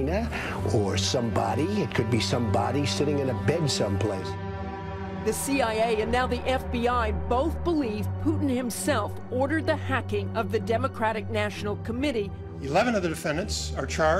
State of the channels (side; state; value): both; identical; correlation 1.00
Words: or somebody. It could be somebody sitting in a bed someplace. The CIA and now the FBI both believe Putin himself ordered the hacking of the Democratic National Committee. 11 of the defendants are